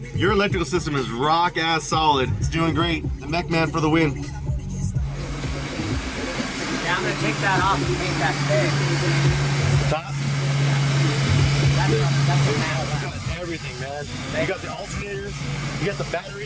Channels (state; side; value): identical; both; correlation 1.00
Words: your electrical system is rock ass solid. It's doing great. The Mech-Man for the win. Yeah, I'm gonna take that off and paint that today. Top? That's a map. You got everything, man. You got the alternators, you got the battery,